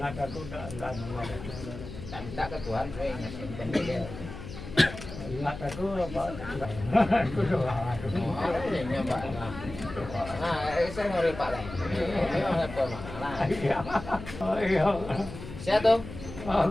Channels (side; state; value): left; noise; hum, 12 dB below the sound